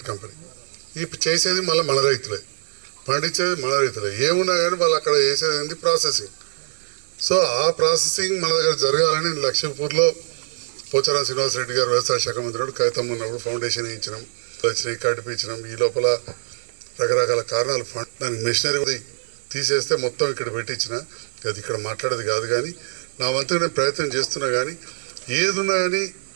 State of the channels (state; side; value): silent; left; 57 dB below the other